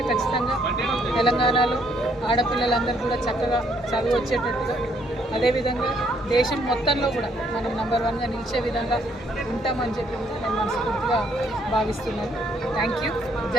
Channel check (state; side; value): normal; both; correlation 0.69